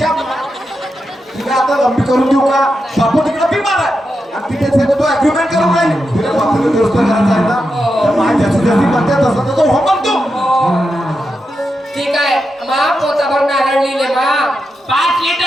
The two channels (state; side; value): normal; both; correlation 0.87